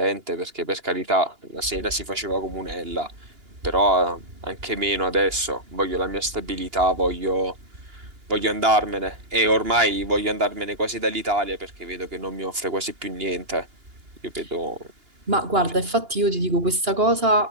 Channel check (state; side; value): late; left; 2.9 ms